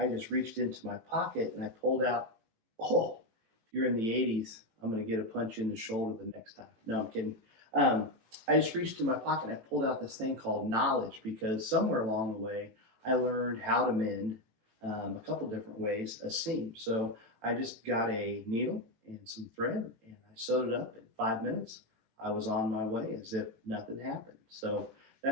just reached into my pocket and I pulled out. Oh, if you're in the 80s, I'm going to get a punch in the shoulder the next time. No, I'm kidding. I just reached in my pocket and I pulled out this thing called knowledge because somewhere along the way I learned how to mend a couple different ways a seam. So I just got a needle and some thread and I sewed it up in 5 minutes. I was on my way as if nothing happened. So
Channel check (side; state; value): left; late; 18 ms